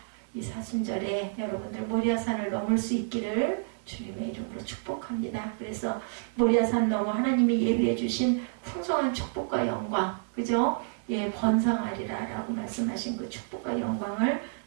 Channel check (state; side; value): silent; left; 58 dB below the other